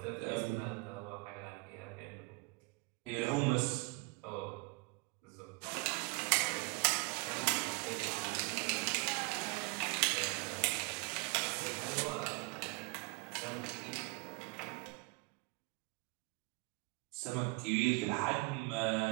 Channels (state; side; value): quieter; left; 27.8 dB